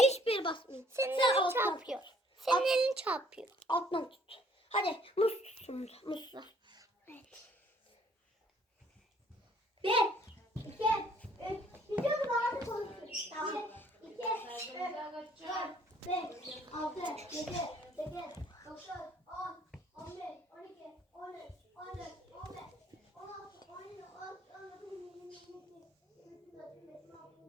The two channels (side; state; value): both; normal; correlation 0.61